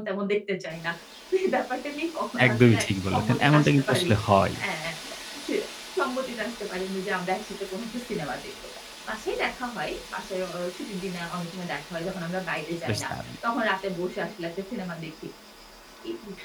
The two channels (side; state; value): both; identical; correlation 1.00